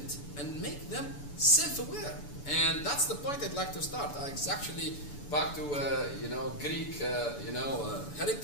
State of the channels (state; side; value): late; right; 6.9 ms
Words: and make them self-aware. And that's the point I'd like to start. It's actually back to Greek